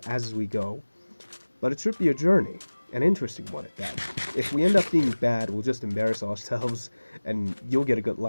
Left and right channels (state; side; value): inverted; both; correlation -1.00